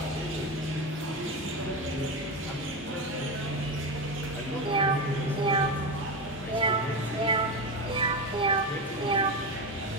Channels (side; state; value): both; normal; correlation 0.18